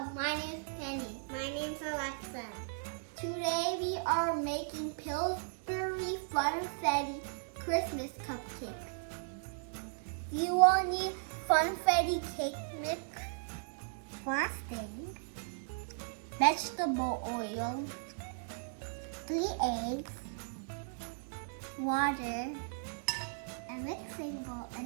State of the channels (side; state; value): left; silent; digital silence